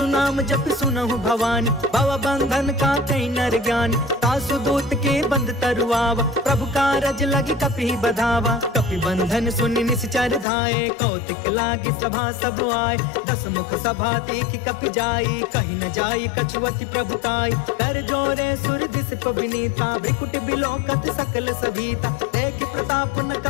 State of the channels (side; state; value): right; drops out; at 10.5 s